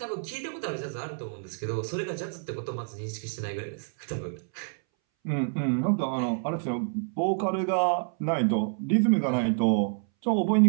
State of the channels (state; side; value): silent; left; 59 dB below the other